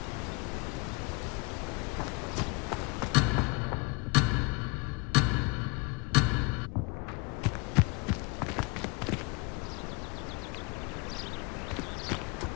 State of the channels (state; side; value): quieter; right; 28.5 dB